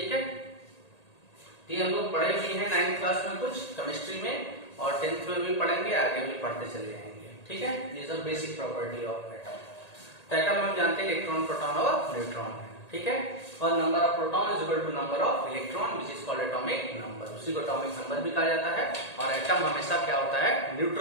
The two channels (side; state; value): right; late; 1.8 ms